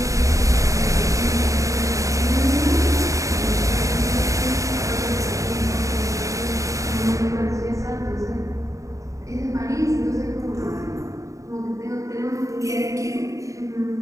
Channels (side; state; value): left; late; 0.16 ms